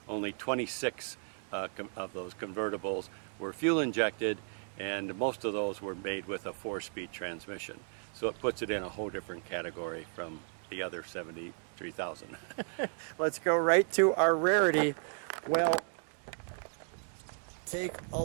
only 26 of those convertibles were fuel injected, and most of those were made with a 4-speed transmission. So it puts it in a whole different category from the other 73,000. Let's go right to our rarity. Well, take a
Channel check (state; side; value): silent; left; 55 dB below the other